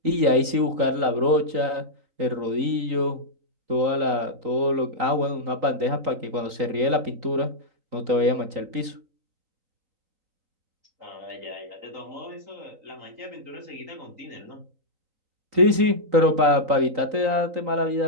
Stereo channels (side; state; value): left; late; 3.9 ms